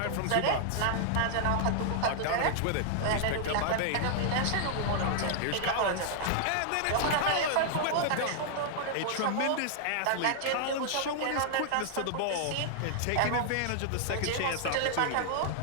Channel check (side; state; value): both; different; correlation -0.01